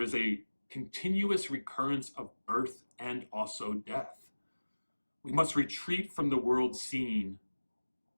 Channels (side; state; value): both; inverted; correlation -1.00